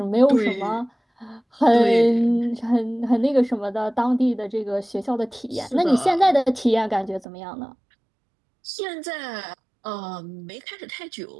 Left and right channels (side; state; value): left; drops out; at 7.2 s